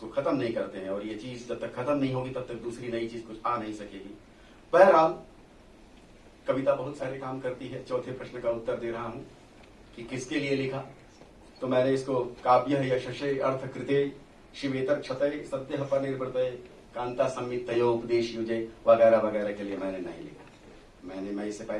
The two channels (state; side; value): identical; both; correlation 1.00